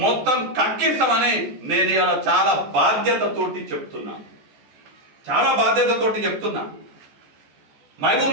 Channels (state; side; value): late; left; 14 ms